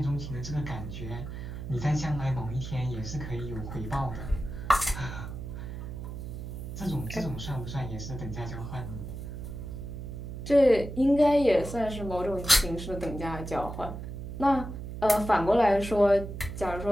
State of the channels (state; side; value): noise; right; hum, 8 dB below the sound